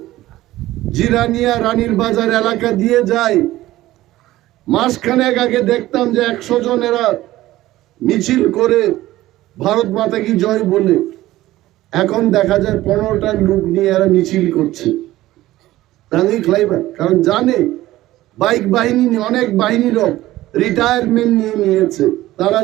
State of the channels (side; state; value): left; quieter; 16.1 dB